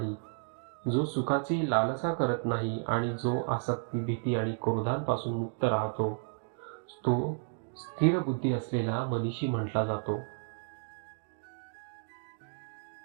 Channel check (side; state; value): left; silent; digital silence